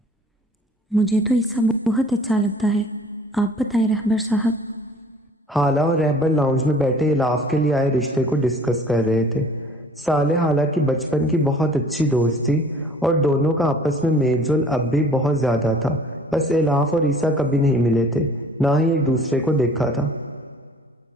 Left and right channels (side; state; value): both; normal; correlation 0.50